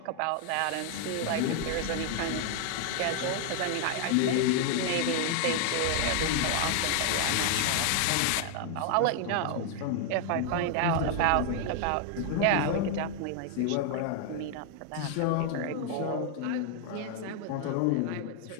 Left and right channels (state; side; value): different; both; correlation 0.00